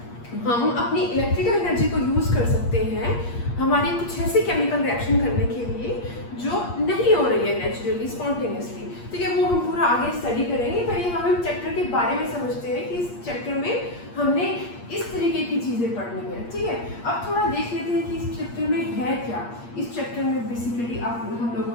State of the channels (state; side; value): late; right; 8.5 ms